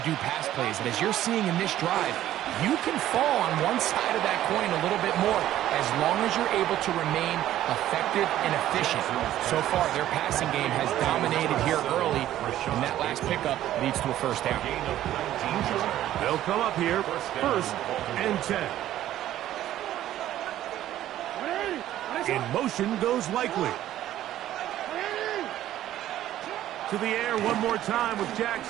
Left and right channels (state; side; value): quieter; left; 13.0 dB